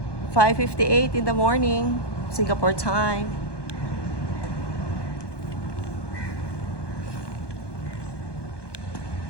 5:58 in the morning, Singapore time.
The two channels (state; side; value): late; right; 1.2 ms